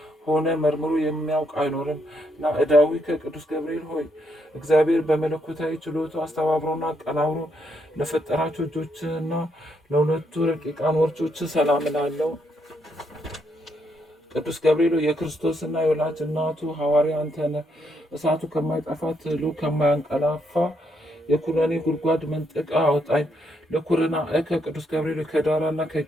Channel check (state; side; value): normal; both; correlation 0.76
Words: መርምሮ የሚያውቅ አይኖርም። ናዕዳዊ ከቅዱስ ገብርኤል ሆይ እግዚአብሔር በመለኮታዊ ችሎቱ አስተባብሮና አቀናብሮ ለፈጠራቸው እጆችና ለሁለቱ ረቂቃን ወርቾች ሰላም እላለሁ። ቅዱስ ገብርኤል የክርስቶስና የወላጅ እናቱ ሐዋርያ አንተ ነህ። እሳቱ ከማይጠፋ ትሉ ከማያንቀላፋ የኩነኔ ጉድጓድ መንጠቃ አውጣኝ። ለኩርና ከቅዱስ ገብርኤል ከዳራና